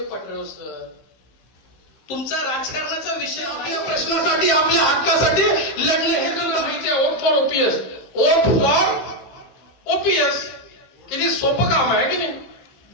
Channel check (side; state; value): right; late; 15 ms